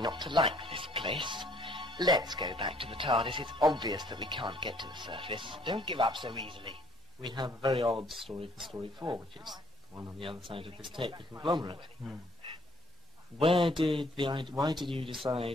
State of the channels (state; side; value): normal; both; correlation 0.61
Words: not to like this place. Let's go back to the TARDIS. It's obvious that we can't get to the surface. Don't give up so easily. We have a very odd story for story 4, which is the one on the other side of this tape, the Conglomerate. Why did you